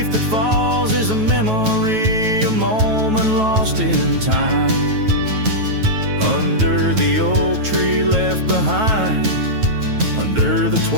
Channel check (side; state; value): left; late; 9.2 ms